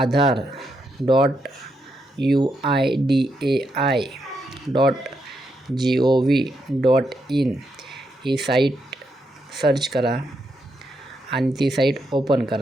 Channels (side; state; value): both; normal; correlation 0.81